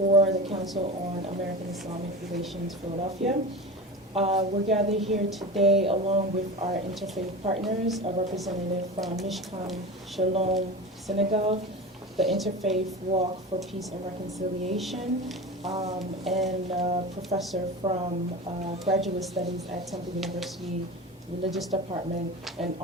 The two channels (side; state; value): both; normal; correlation 0.29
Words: the Council on American Islamic Relations, Philadelphia. We're gathered here today along with our interfaith partners, a representative from Mishkan Shalom Senegal, the Interfaith Walk for Peace and Reconciliation, and a professor from Graduate Studies at Temple University Religious Department, and